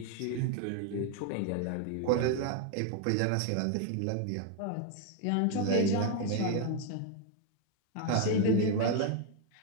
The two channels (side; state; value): both; different; correlation 0.01